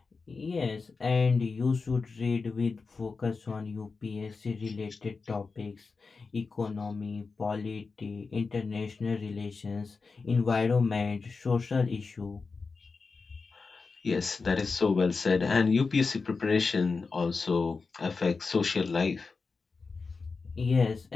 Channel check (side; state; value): right; quieter; 4.5 dB